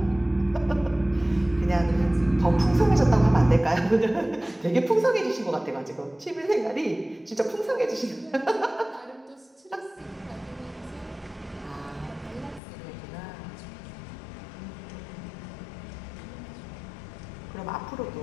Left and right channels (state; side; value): drops out; right; at 12.6 s